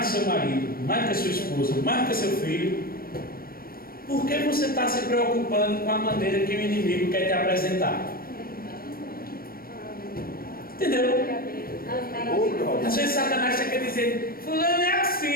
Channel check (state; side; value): late; right; 0.43 ms